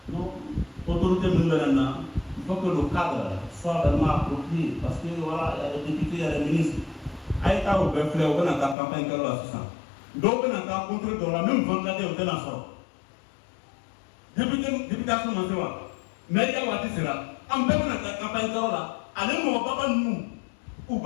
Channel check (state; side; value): drops out; right; at 8.8 s